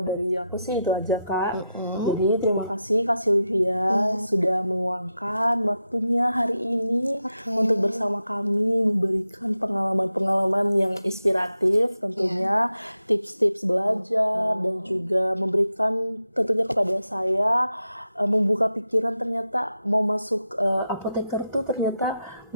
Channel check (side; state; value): both; inverted; correlation -0.87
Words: aku sih itu aja Kak. Jadi terima kasih Kak Sylvia sudah meluangkan waktunya hari ini untuk bersama kami memberikan pengalaman-pengalaman yang inspiratif, tentunya tips-tips belajar dan juga memberikan tentunya kepada saya membuka pikiran, ternyata mau masuk apoteker tuh ternyata